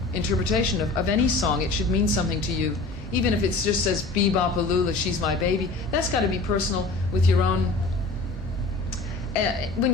interpretation of any song. It should mean something to you. Even if it just says Bebop-a-Lula, she's my baby, that's got to be personal with your own. When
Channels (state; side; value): quieter; right; 3.4 dB